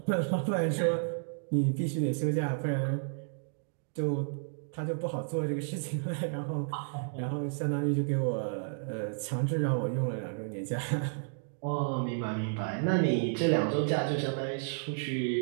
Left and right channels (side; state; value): left; silent; digital silence